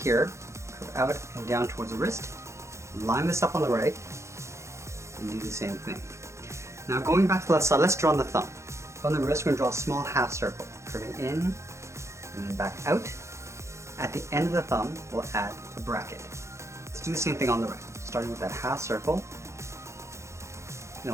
curve out and down towards the wrist, line this up on the right, and do the same thing. Now going back to the left side, let's draw on the thumb. From the wrist, we're going to draw a small half circle, curving in and then back out. At the end of the thumb, we'll add a bracket. Let's do the same thing on the right, starting with that half circle, and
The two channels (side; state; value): left; late; 0.14 ms